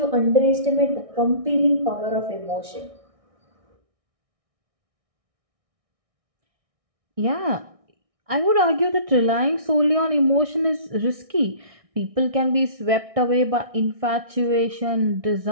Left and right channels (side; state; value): left; late; 1.6 ms